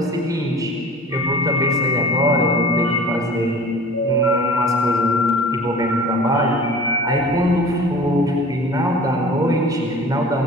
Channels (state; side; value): normal; both; correlation 0.42